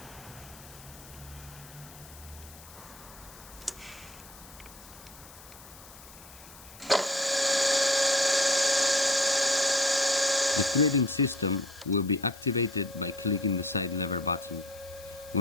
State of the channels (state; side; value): noise; left; hiss, 19 dB below the sound